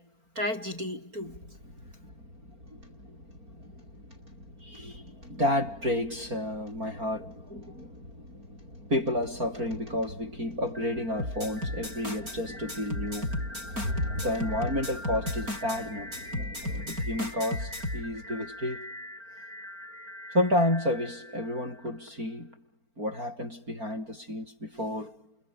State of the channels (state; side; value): late; left; 4.4 ms